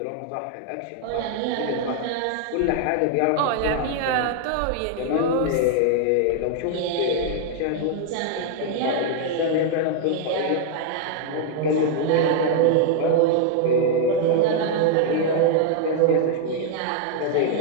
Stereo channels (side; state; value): both; different; correlation 0.00